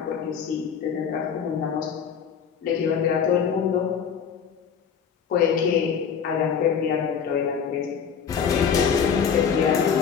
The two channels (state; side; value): quieter; right; 7.1 dB